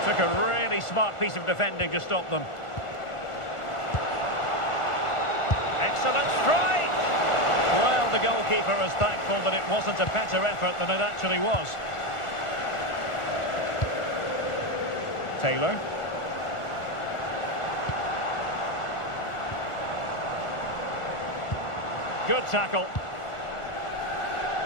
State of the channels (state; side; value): late; right; 1.4 ms